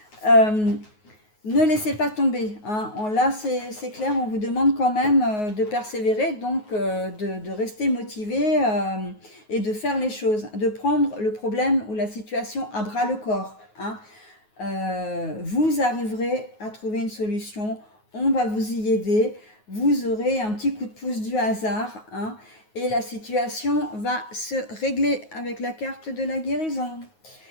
Euh, Ne laissez pas tomber, hein. Là, c'est clair, on vous demande quand même de persévérer, donc de rester motivé et de faire les choses, de prendre le problème ou la situation à bras le corps, hein. Vous arriverez à trouver une solution, on va vous y aider, vous aurez un petit coup de pouce du hasard, hein, et la situation va se régler avec la carte de la guérison.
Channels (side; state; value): right; late; 9.4 ms